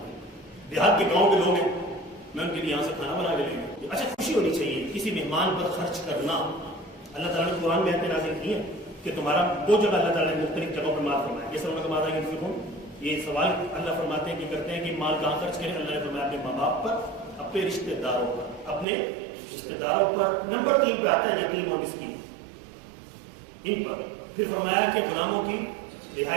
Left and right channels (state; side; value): drops out; left; at 18.9 s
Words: دیہات کے گاؤں کے لوگ ہیں, میں ان کے لیے یہاں سے کھانا بنا کے لیں گے. اچھا خوشی ہونی چاہیے کسی مہمان پر خرچ کرنا. اللہ تعالیٰ نے قرآن میں نازل کی ہے کہ تمہارا وہ جگہ اللہ تعالیٰ نے مختلف جگہوں پر مال فرمایا. جیسے انہوں نے کہا کہ یہ سوال اللہ فرماتے ہیں کہ کرتے ہیں کہ مال کہاں خرچ کریں. اللہ نے فرمایا اپنے ماں باپ پر, اپنے رشتے داروں پر, اپنے رشتے داروں پر. نمبر 3 پہ آتا ہے یتیم اور مسکین, ان پر. پھر فرمایا کہ غلاموں کی